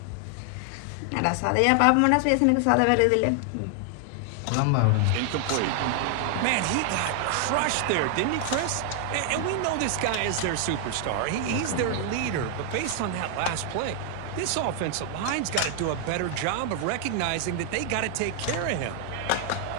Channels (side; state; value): both; different; correlation 0.00